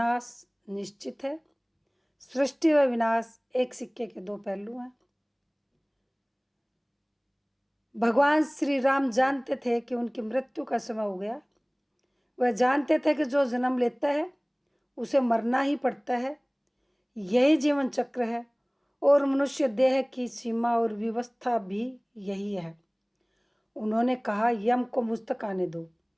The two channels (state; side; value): identical; both; correlation 1.00